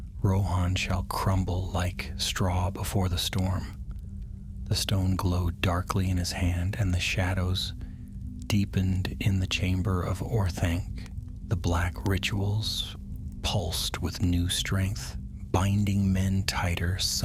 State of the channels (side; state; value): both; identical; correlation 1.00